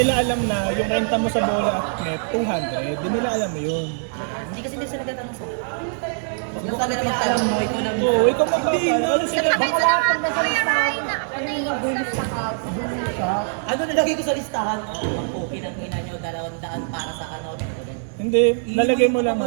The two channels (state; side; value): silent; left; digital silence